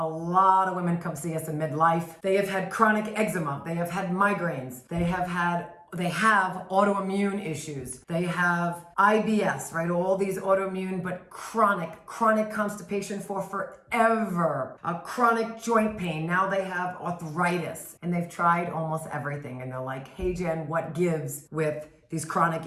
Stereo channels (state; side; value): identical; both; correlation 1.00